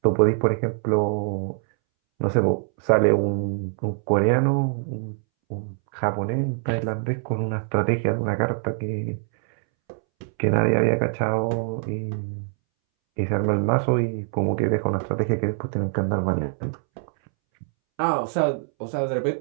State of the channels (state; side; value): silent; left; 63 dB below the other